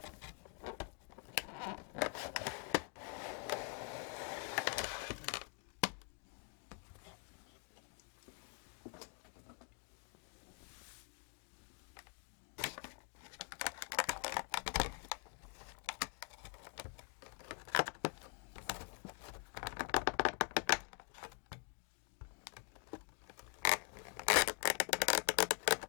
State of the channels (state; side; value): quieter; right; 38.1 dB